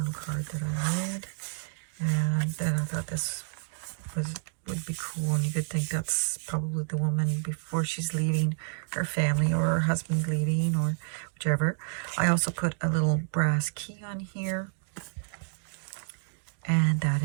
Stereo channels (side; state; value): left; silent; 58 dB below the other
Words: card that I made. And then I thought this would be cool, and you could think that's probably the woman before she's leaving her family, or her husband leaving, or whichever. I also put a little brass key on here, and that